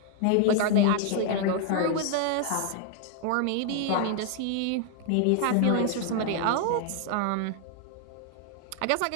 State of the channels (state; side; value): different; both; correlation 0.00